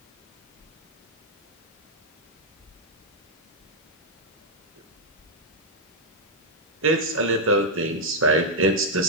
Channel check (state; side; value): normal; both; correlation -0.03